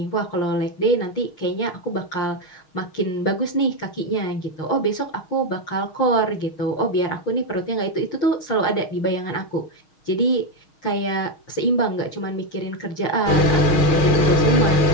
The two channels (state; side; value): late; right; 6.4 ms